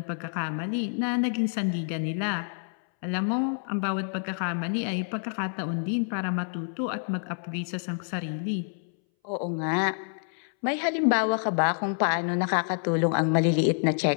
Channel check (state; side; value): silent; right; 60 dB below the other